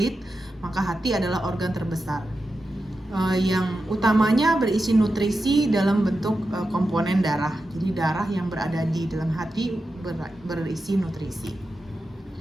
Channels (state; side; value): normal; both; correlation 0.90